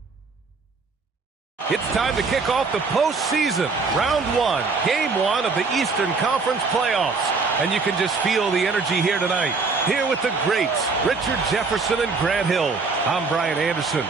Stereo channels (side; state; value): left; quieter; 4.4 dB